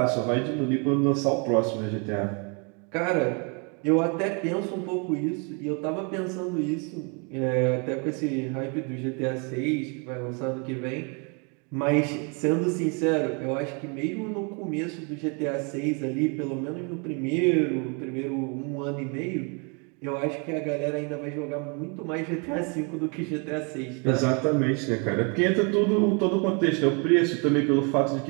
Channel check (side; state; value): left; quieter; 34.6 dB